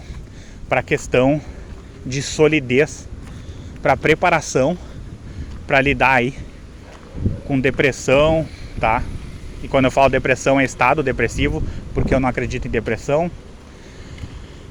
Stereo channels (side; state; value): both; identical; correlation 1.00